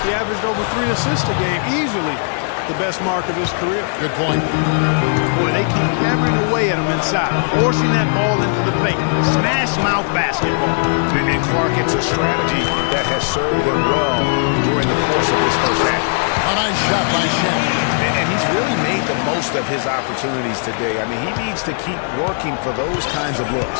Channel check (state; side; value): silent; right; 56 dB below the other